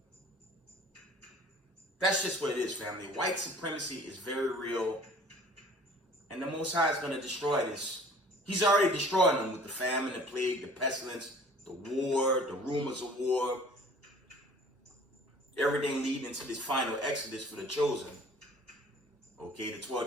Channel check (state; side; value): normal; both; correlation 0.49